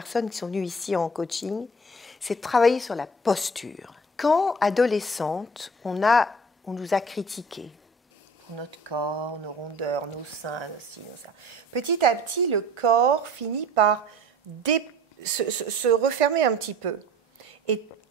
qui sont venues ici en coaching, c'est de travailler sur la posture. Quand, adolescente, on nous a critiqués pour notre corps, nos rondeurs, nos seins, nos ci, nos ça. Petit à petit, le corps finit par se refermer un petit peu. Et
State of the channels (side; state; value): both; normal; correlation 0.46